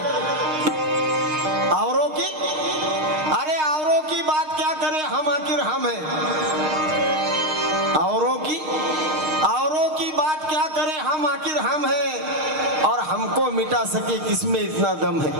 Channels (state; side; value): late; left; 6.5 ms